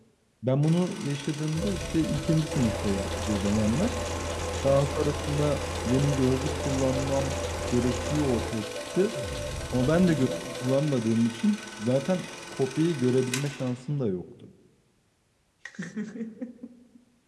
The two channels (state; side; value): identical; both; correlation 1.00